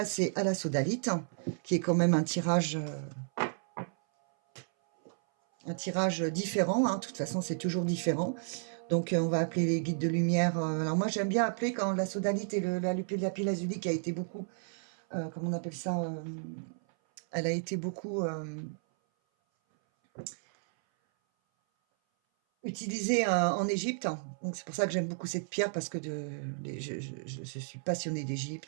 à la sodalite, qui est quand même un tirage différent. Hein. De toute façon, c'est toujours différent. Donc, on va appeler les guides de lumière. Alors, moi, j'aime bien appeler quand la sodalite et la pile azulique a été beaucoup, comment on appelle ça, elle a été beaucoup utilisée en Égypte. Donc, c'est pour ça que j'aime beaucoup cette pierre, parce que je suis passionnée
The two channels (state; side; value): silent; left; 56 dB below the other